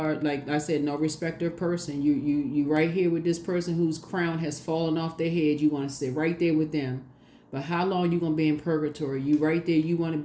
like I said, no respecter of person. You right here with this person whose crown has fallen off their head. You want to sit right there with them. But how long you gonna be in purgatory? You right there. You want to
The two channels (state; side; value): identical; both; correlation 1.00